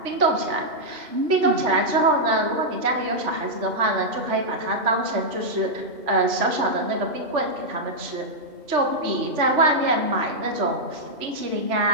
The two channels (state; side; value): late; left; 3.3 ms